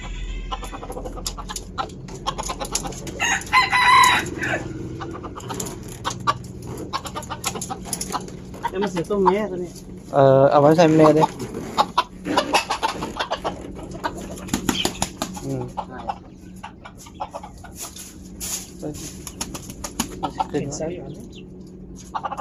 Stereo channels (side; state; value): both; identical; correlation 1.00